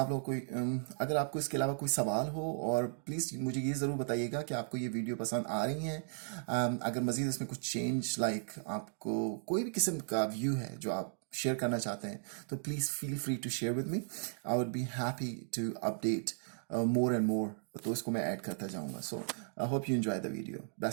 लोग अगर आपको इसके अलावा कोई सवाल हो और प्लीज़ मुझे ये ज़रूर बताइएगा कि आपको ये वीडियो पसंद आ रही हैं। अगर मज़ीद इसमें कुछ चेंज आपको कोई भी किस्म का व्यू है जो आप शेयर करना चाहते हैं तो प्लीज़ फील फ्री टू शेयर विद मी। आई वुड बी हैप्पी टू अपडेट मोर एंड मोर, तो इसको मैं ऐड करता जाऊँगा। सो आई होप यू एंजॉय द वीडियो।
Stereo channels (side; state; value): left; silent; digital silence